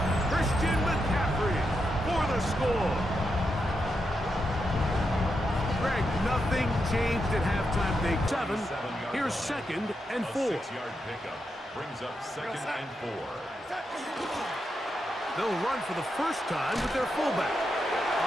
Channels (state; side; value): normal; both; correlation 0.85